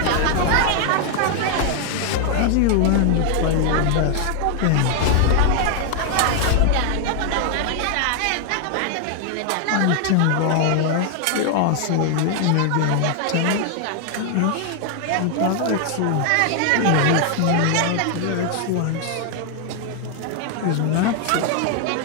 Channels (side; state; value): both; different; correlation 0.00